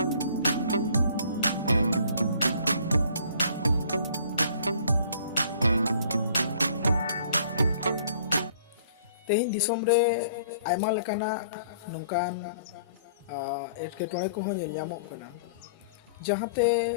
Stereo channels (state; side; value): inverted; both; correlation -0.55